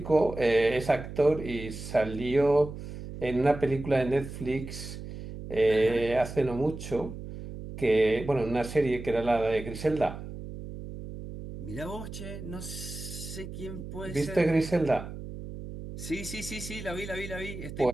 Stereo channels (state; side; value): noise; right; hum, 10 dB below the sound